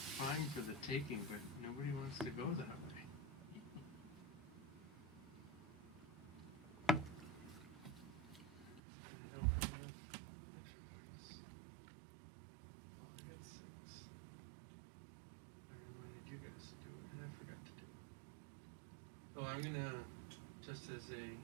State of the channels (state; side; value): drops out; left; at 8.8 s